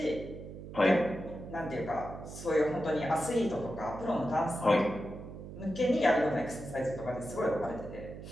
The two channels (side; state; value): right; noise; hum, 12 dB below the sound